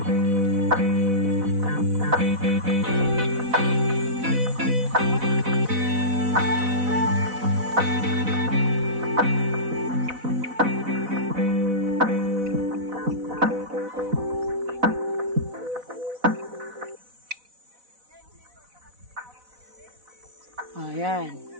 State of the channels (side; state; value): left; late; 4.0 ms